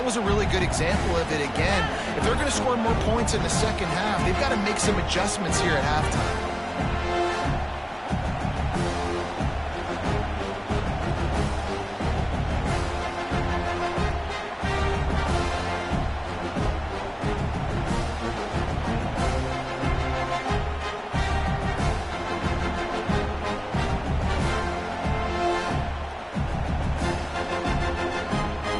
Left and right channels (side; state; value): both; identical; correlation 1.00